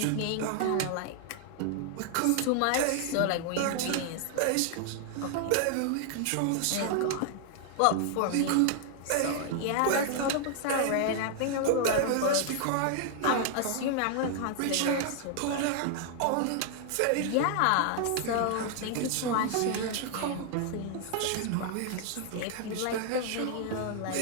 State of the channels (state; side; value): different; both; correlation 0.00